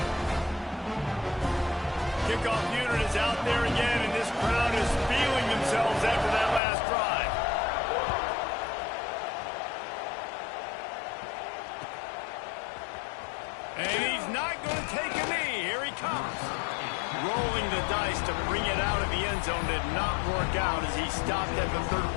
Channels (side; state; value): right; drops out; at 6.6 s